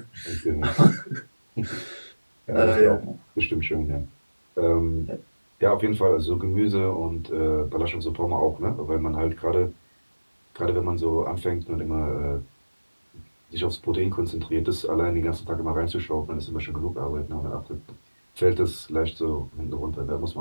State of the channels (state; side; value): inverted; both; correlation -1.00